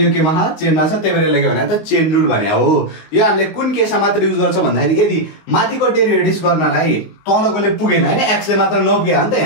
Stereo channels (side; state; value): right; late; 19 ms